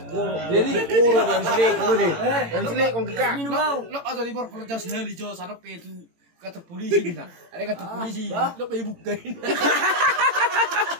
Jadi kurang yang selek ini. Yang selek kong kita. Lo atau di bawah kalau jauh sekali jauh sana itu kantor polisi kita. Ada kantor polisi. Lo pergi bukain.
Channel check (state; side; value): late; left; 18 ms